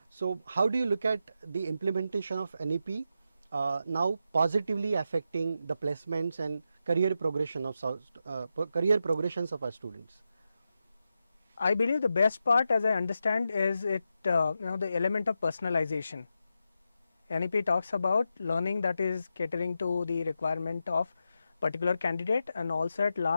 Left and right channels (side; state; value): both; inverted; correlation -0.87